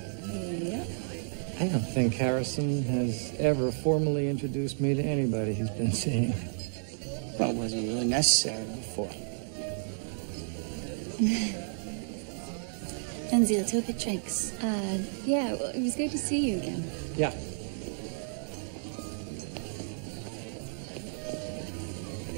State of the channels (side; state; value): left; silent; 57 dB below the other